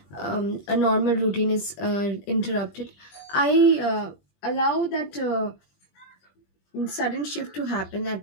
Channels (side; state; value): right; late; 20 ms